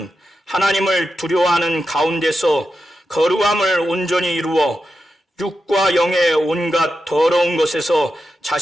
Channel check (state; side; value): normal; both; correlation 0.89